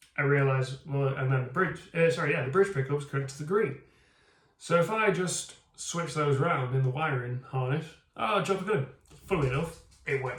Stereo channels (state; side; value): identical; both; correlation 1.00